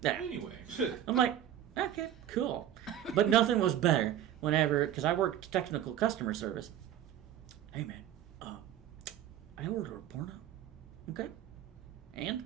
yeah. Anyway. I'm like, okay, cool. But nothing was better whenever, because I worked technical customer service. Hey man, I ordered a porno. Okay?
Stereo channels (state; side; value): quieter; left; 11.1 dB